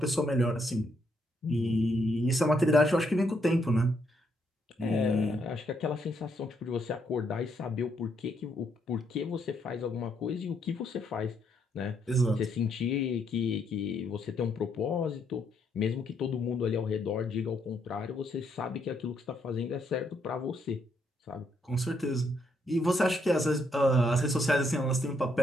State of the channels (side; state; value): both; normal; correlation 0.74